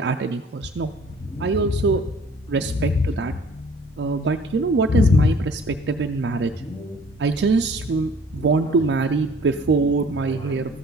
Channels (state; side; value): normal; both; correlation 0.52